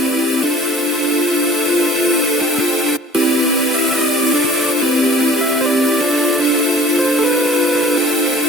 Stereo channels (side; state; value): both; normal; correlation 0.47